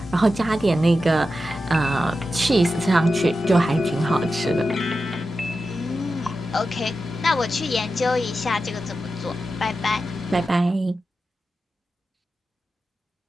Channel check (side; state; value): both; normal; correlation 0.91